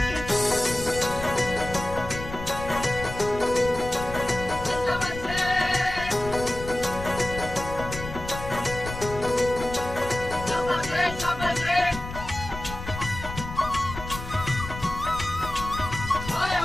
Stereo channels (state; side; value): noise; left; rumble, 9 dB below the sound